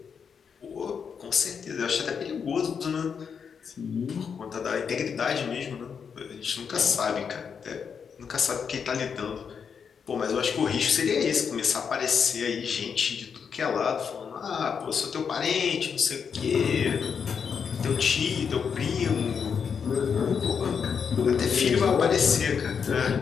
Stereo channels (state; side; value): quieter; right; 6.6 dB